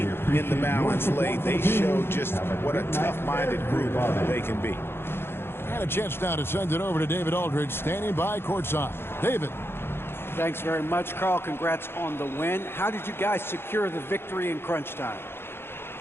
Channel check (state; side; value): late; right; 0.11 ms